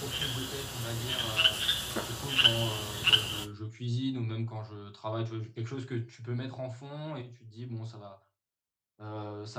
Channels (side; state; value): both; identical; correlation 1.00